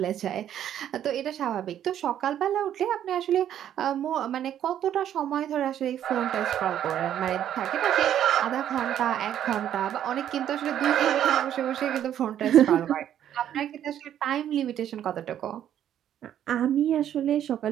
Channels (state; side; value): quieter; left; 10.5 dB